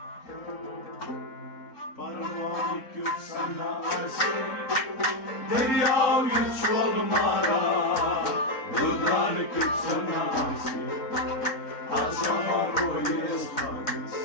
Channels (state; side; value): late; right; 3.6 ms